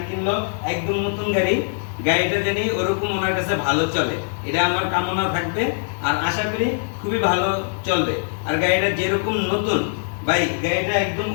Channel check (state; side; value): silent; right; digital silence